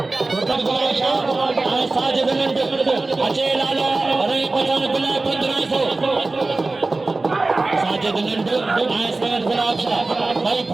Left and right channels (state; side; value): quieter; left; 3.3 dB